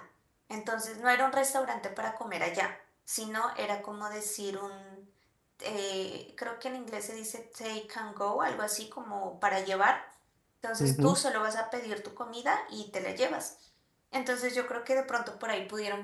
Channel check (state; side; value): identical; both; correlation 1.00